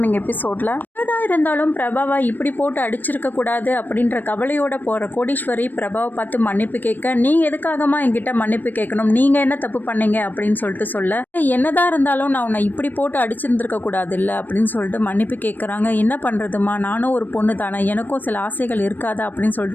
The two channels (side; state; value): right; late; 0.089 ms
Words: எபிசோடில் என்னதான் இருந்தாலும் பிரபாவை இப்படி போட்டு அடிச்சிருக்க கூடாது அப்படின்ற கவலையோட போகிற கோடீஸ்வரி பிரபாவை பார்த்து மன்னிப்பு கேட்க, நீ எதுக்காகமா என்கிட்ட மன்னிப்பு கேட்கணும், நீங்கள் என்ன தப்பு பண்ணீங்க அப்படின்னு சொல்ல என்னதான் இருந்தாலும் நான் உன்னை இப்படி போட்டு அடிச்சிருந்துருக்க கூடாது இல்லை அப்படின்னு சொல்லிட்டு மன்னிப்பு கேட்குறாங்க. என்ன பண்ணுறதுமா, நானும் ஒரு பொண்ணு தானே, எனக்கும் சில ஆசைகள் இருக்காதா அப்படின்னு